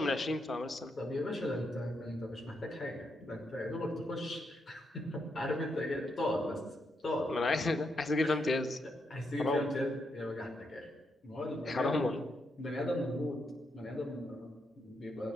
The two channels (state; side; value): normal; both; correlation 0.81